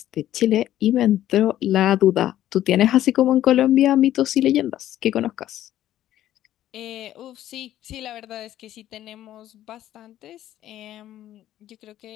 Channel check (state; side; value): quieter; right; 12.8 dB